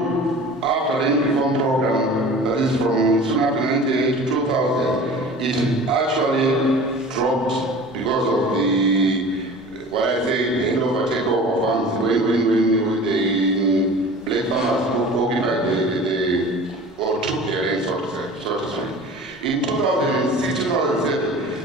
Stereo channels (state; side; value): normal; both; correlation 0.41